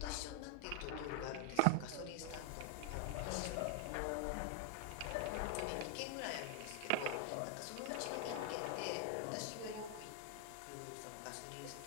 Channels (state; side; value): different; both; correlation 0.00